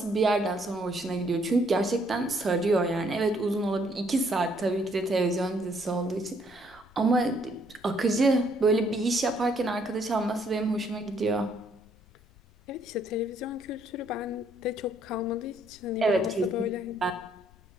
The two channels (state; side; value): noise; left; rumble, 27 dB below the sound